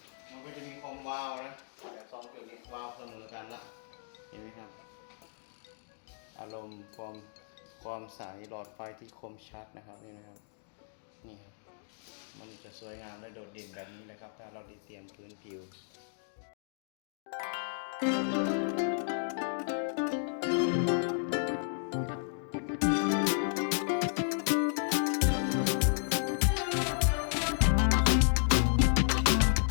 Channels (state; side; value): silent; right; digital silence